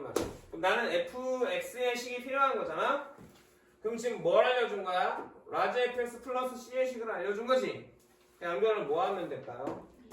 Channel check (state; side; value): identical; both; correlation 1.00